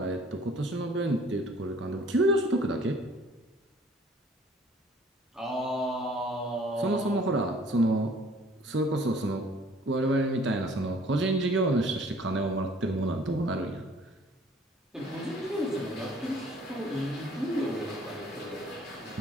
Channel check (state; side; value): normal; both; correlation 0.55